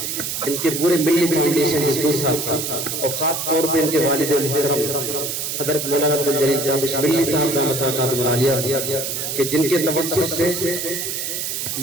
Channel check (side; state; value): right; noise; hiss, 3 dB below the sound